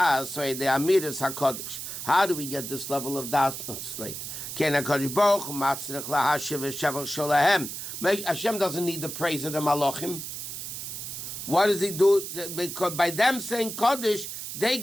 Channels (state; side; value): noise; right; hiss, 7 dB below the sound